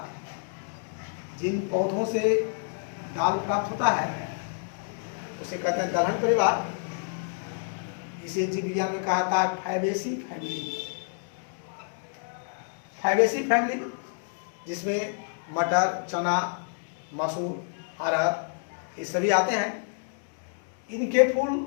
जिन पौधों से दाल प्राप्त होता है उसे कहते हैं दलहन परिवार। इसे जीव विज्ञान में कहा जाता है फैबेसी फैमिली। फैबेसी फैमिली जिसमें मटर, चना, मसूर, अरहर ये सभी आते हैं। इनके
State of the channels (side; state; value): right; silent; digital silence